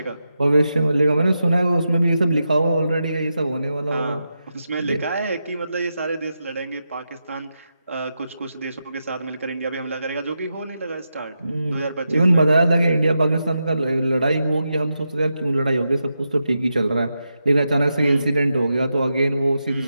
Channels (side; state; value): both; inverted; correlation -0.87